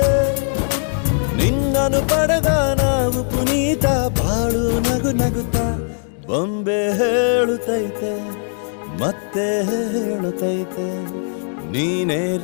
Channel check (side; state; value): right; silent; digital silence